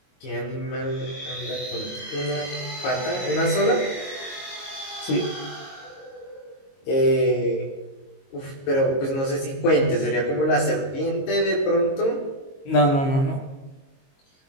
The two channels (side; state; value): right; late; 22 ms